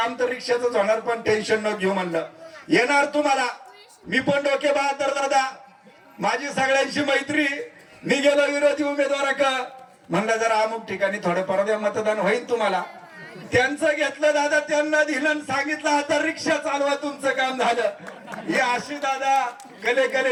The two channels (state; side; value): identical; both; correlation 1.00